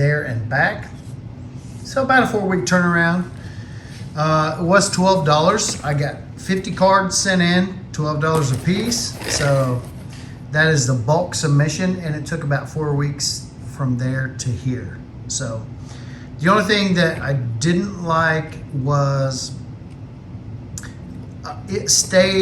and back. So about a 4-week turnaround. It was $12. I got 50 cards sent in, $12 a piece. So that is the bulk submission, and it took about 4 weeks from there to here. So the only thing that I didn't like was it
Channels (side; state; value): both; identical; correlation 1.00